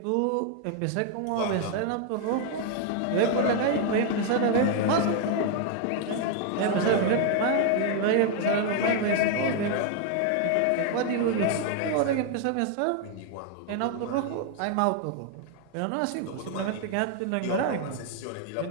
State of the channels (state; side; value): different; both; correlation 0.00